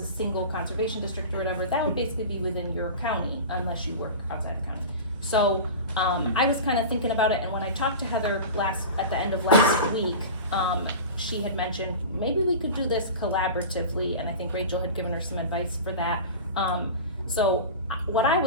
single conservation district or whatever, that would basically be within your county unless you work outside the county. So, I was kind of thinking about it, and when I talked to Heather at the end of last week, she had mentioned, maybe we could do this collaboratively, and I think Rachel had given her some advice for that. So what I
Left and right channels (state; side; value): inverted; both; correlation -0.31